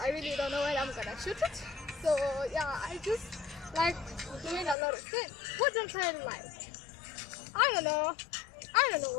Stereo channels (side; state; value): right; drops out; at 4.8 s